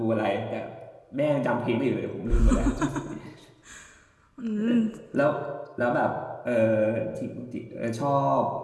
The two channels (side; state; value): both; identical; correlation 1.00